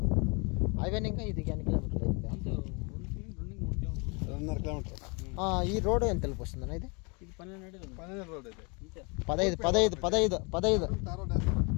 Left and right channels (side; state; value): right; quieter; 31.6 dB